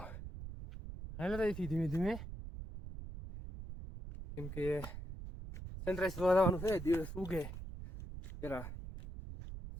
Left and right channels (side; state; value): right; noise; rumble, 9 dB below the sound